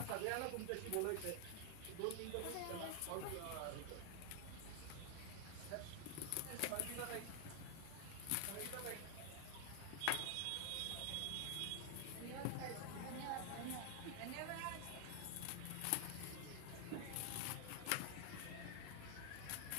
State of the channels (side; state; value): both; different; correlation 0.00